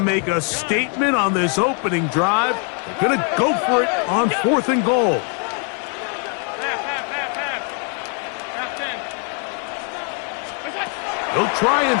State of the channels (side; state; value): right; quieter; 39.2 dB